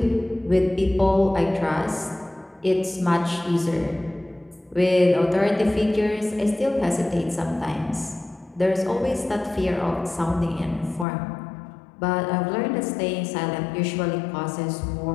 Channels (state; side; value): drops out; right; at 11.1 s